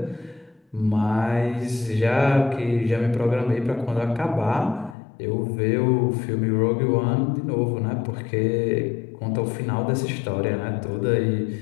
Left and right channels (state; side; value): drops out; right; at 5.0 s